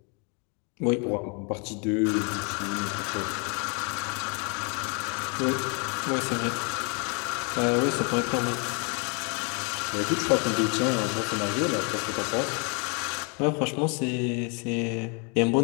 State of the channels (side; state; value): right; quieter; 35.3 dB